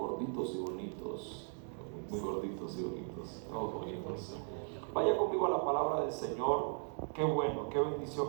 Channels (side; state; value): left; silent; 53 dB below the other